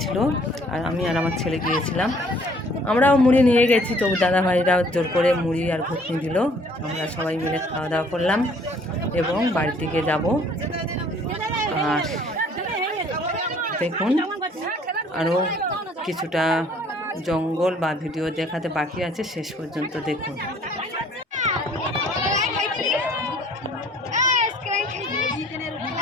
আর আমি আর আমার ছেলে গিয়েছিলাম। আমরাও মুড়ি নিয়ে গেছি, তবু দাদাভাইরা জোর করে মুড়ি আর ঘুগনি দিল। আমরা সবাই মিলে খাওয়া দাওয়া করলাম এবং বাড়ির দিকে যাব। আর দেখুন আরও কিছুটা জঙ্গল বা ভিডিও দেখাতে বাকি আছে, শেষ পর্যন্ত দেখুন।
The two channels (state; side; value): normal; both; correlation 0.58